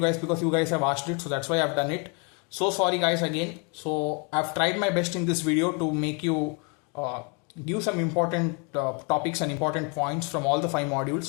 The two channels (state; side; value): quieter; right; 33.6 dB